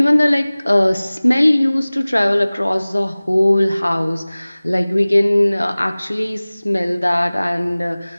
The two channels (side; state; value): both; inverted; correlation -0.99